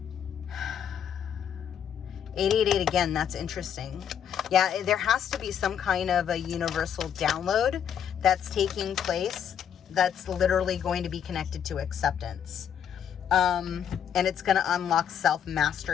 888 again, that's interesting. Yeah, there has to be some kind of a universal download that's taking place that's literally going to be connected to acceptance. And it's going to unlock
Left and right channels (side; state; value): right; quieter; 8.6 dB